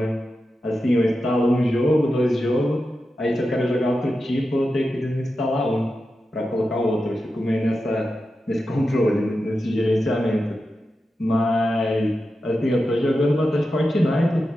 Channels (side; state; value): both; normal; correlation 0.90